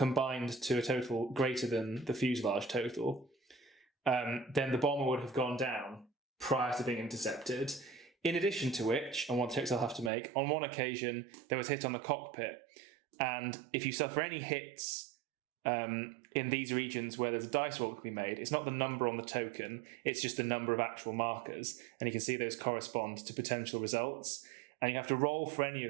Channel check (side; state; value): left; drops out; at 10.1 s